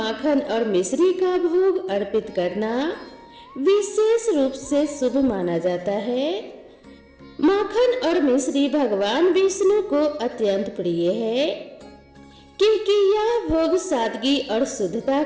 और मिश्री का भोग अर्पित करना विशेष रूप से शुभ माना जाता है। माखन और मिश्री भगवान विष्णु को अत्यंत प्रिय है, क्योंकि यह भोग सादगी और शुद्धता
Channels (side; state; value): both; identical; correlation 1.00